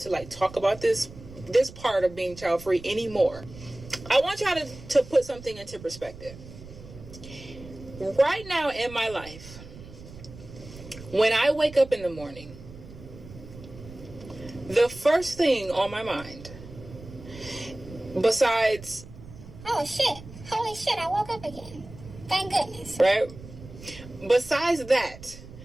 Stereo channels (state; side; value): noise; right; rumble, 16 dB below the sound